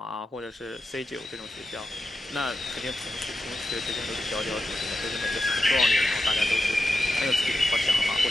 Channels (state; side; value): normal; both; correlation 0.90